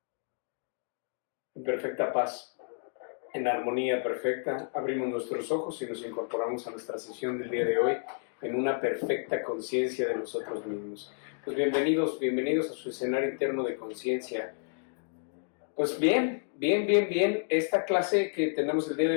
En perfecta paz, en armonía perfecta, abrimos nuestros ojos y nos incorporamos a nuestra sesión del día de hoy en una perfecta conciencia de nosotros mismos. Pues bienvenidos a su escenario interno de conciencia. Pues bien. Esta clase que tenemos el día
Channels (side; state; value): right; silent; digital silence